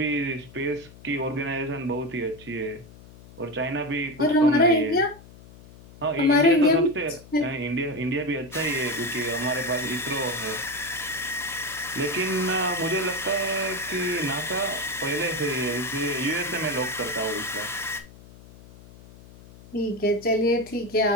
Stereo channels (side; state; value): left; noise; hum, 20 dB below the sound